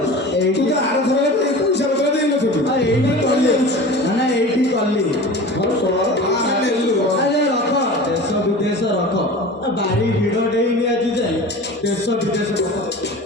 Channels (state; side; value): normal; both; correlation 0.36